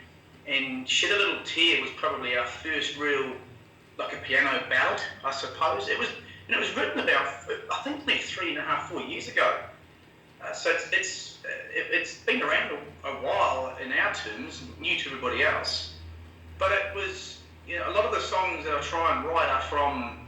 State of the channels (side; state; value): both; identical; correlation 1.00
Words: And Shed a Little Tear was probably our first real, like a piano ballad, I suppose. It was written about, I think, maybe 3.5, 4 years ago. So it's been around a while in our terms, new to everybody else. But it was, a lot of the songs that I try and write are from